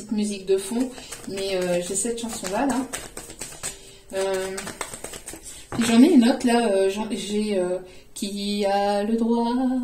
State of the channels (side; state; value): both; identical; correlation 1.00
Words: musique de fond. Mais j'ai cette chanson-là, là. J'en ai une autre, là. J'ai qui a le droit,